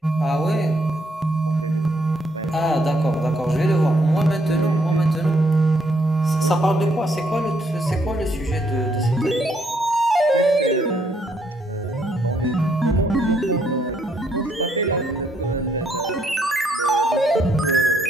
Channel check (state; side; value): normal; both; correlation 0.72